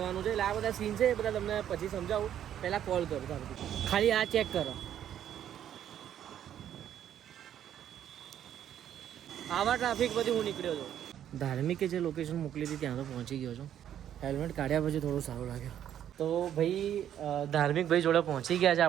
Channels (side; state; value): left; quieter; 10.4 dB